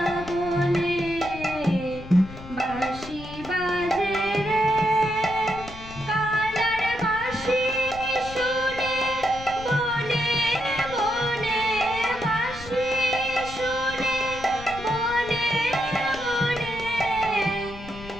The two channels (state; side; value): noise; left; rumble, 14 dB below the sound